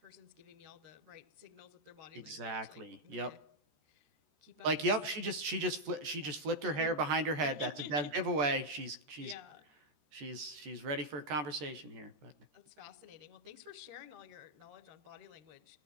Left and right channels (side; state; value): left; late; 13 ms